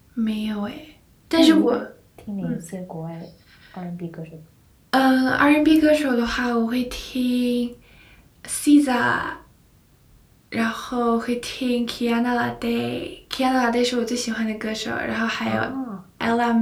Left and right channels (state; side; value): identical; both; correlation 1.00